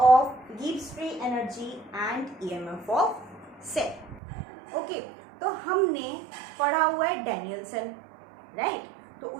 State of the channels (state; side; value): drops out; left; at 4.2 s